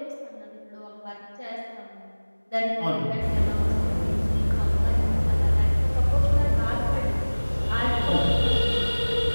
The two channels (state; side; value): inverted; both; correlation -1.00